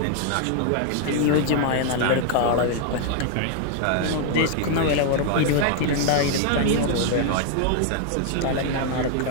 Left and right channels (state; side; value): different; both; correlation 0.00